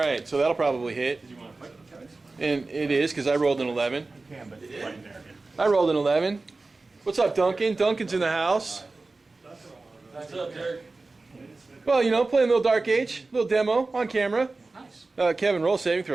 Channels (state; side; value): quieter; left; 3.5 dB